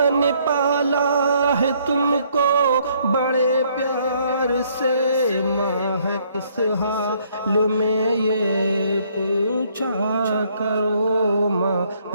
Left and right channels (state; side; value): inverted; both; correlation -0.66